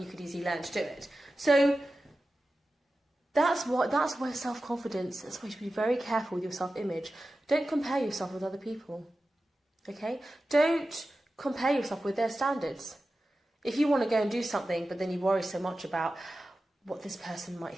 could easily learn to do it. So that's where self-confidence, that's why you should be very careful with your self-image. Don't compare yourself with other people, okay? Don't compare yourself with their standards. If you want to go and do something, but then you worry so much about what this person might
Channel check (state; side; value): normal; both; correlation 0.94